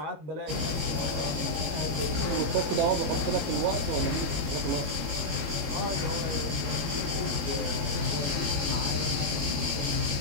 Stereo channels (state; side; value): late; left; 21 ms